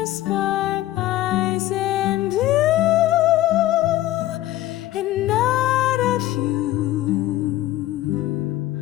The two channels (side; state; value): right; quieter; 15.1 dB